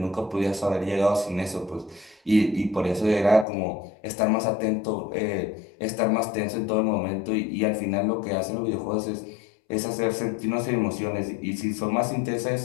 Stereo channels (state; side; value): drops out; right; at 3.5 s